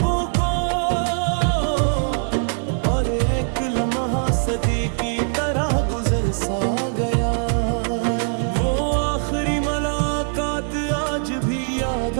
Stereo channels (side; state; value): left; silent; 64 dB below the other